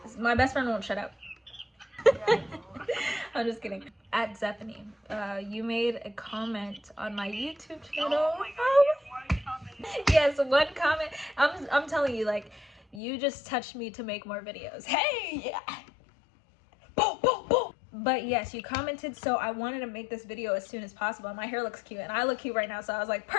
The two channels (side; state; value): right; drops out; at 13.0 s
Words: My best friend won't shut up. I'm just kidding. At Zephany, you made a comment on my YouTube channel. Oh my god, one comment. Yes, one comment. I'm telling you, like, you just touched me to make more videos. Hey, yeah. Boom, boom, boom. But yes, you commented, so I wanted to make this video as soon as possible. My hair looks cute, and I look cute right now, so I was like,